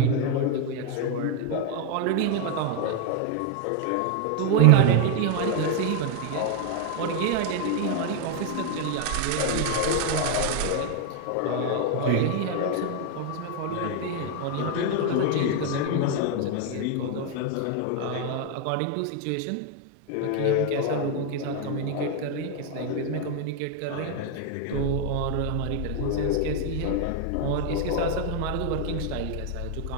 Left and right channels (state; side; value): different; both; correlation 0.00